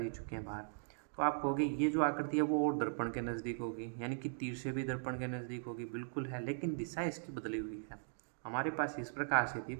ही चुके हैं बाहर। तो आप कहोगे ये जो आकृति है वो और दर्पण के नज़दीक होगी, यानी कि तीर से भी दर्पण के नज़दीक होगी, बिल्कुल है, लेकिन दिशा इसकी बदली हुई है। हमारे पास इस प्रकार से थी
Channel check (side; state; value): left; silent; digital silence